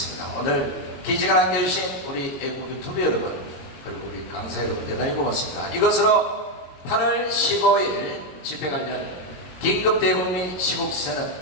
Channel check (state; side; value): late; right; 22 ms